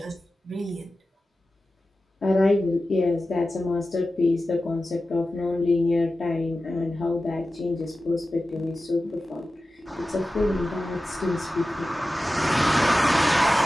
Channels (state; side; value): normal; both; correlation 0.94